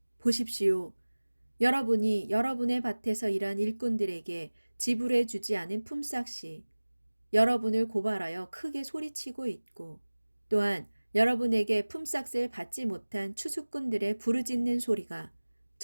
보십시오. 여러분이 여러분의 밭에서 일한 일꾼들에게 지불해 주지 않은 품삯이 여러분을 고발하여 크게 소리치고 있고, 또한 여러분에게 품삯을 받지 못한 추수꾼들의 부르짖는 소리가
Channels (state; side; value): inverted; both; correlation -1.00